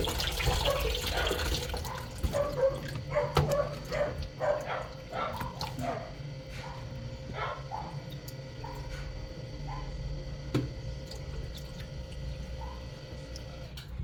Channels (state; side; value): identical; both; correlation 1.00